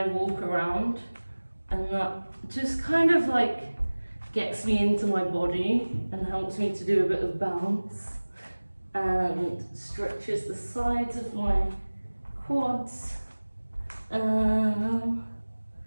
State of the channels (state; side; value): inverted; both; correlation -1.00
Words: walk around, and that just kind of like gets me into my body and helps me to do a bit of bounce and stretches the sides of my quads. So